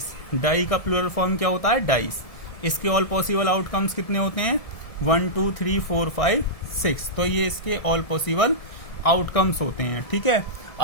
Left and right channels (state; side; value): late; right; 1.7 ms